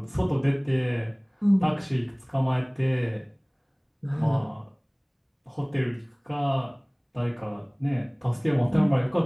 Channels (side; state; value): both; identical; correlation 1.00